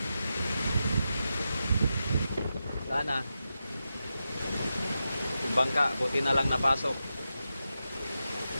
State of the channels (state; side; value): inverted; both; correlation -0.90